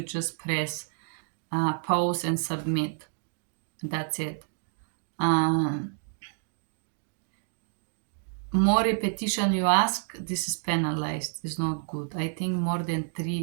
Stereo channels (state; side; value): silent; left; digital silence